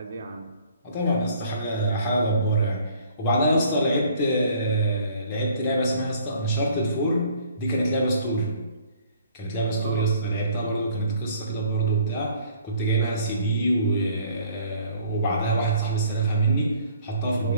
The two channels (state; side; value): inverted; both; correlation -0.56